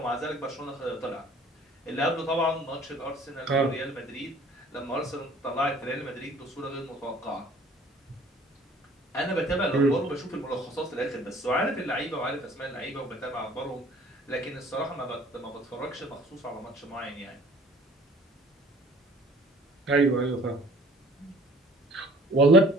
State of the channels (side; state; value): both; normal; correlation 0.52